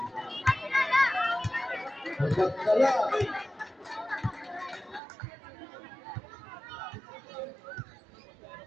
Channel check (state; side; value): drops out; left; at 5.0 s